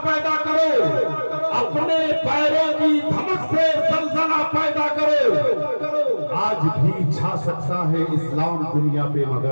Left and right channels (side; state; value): both; inverted; correlation -1.00